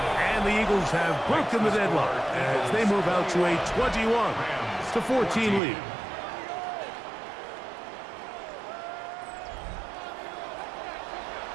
And the Eagles have broken the deadlock as they move out to a 21-14 lead.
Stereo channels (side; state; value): left; drops out; at 5.6 s